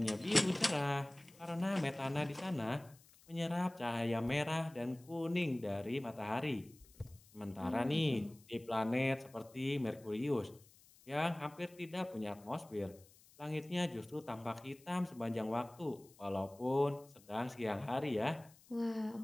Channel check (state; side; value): noise; left; hiss, 26 dB below the sound